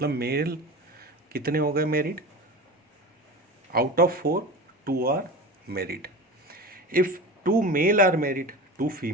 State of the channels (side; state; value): both; normal; correlation 0.31